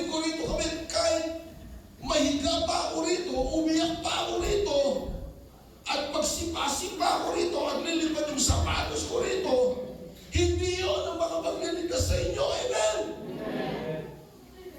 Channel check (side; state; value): both; identical; correlation 1.00